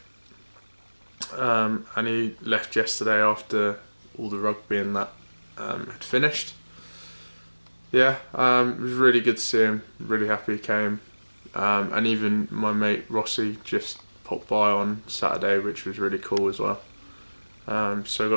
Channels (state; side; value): inverted; both; correlation -1.00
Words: and he left yesterday after all the rugby and that had finished. Yeah, it was really good to see him, really happy he came. And even my mate Rossi just popped by on Saturday, which was really cool as well. So I